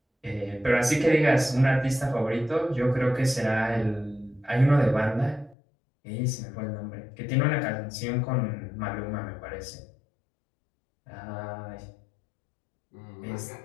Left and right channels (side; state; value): right; drops out; at 5.6 s